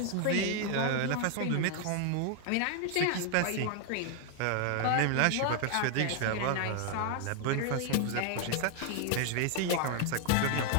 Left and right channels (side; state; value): both; different; correlation 0.00